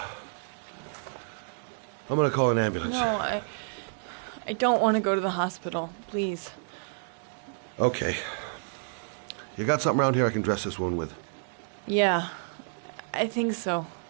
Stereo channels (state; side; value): silent; left; 58 dB below the other